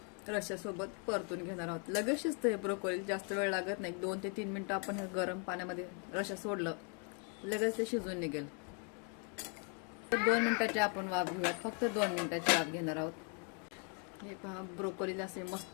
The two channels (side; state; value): right; quieter; 38.9 dB